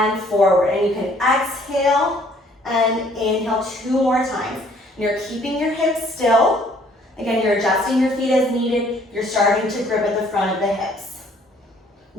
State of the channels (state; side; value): normal; both; correlation 0.60